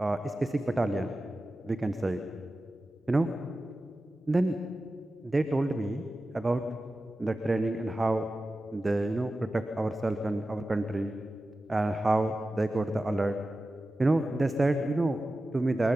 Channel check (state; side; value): normal; both; correlation 0.94